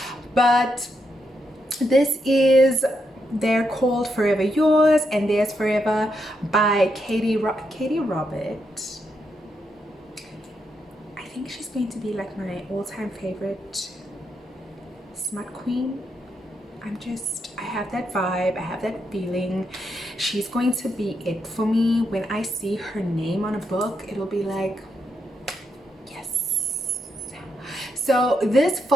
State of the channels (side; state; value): both; normal; correlation 0.81